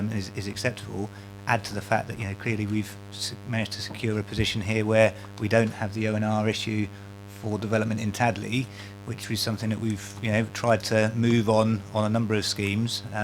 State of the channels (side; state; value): both; identical; correlation 1.00